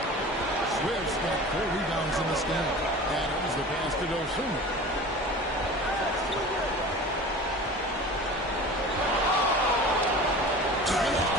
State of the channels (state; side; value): normal; both; correlation 0.37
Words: Swift's got 4 rebounds in this game. Adams the pass to Dosunmu. And it's